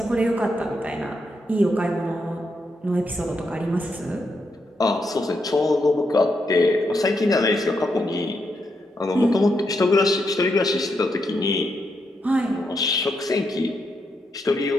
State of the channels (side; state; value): both; normal; correlation 0.81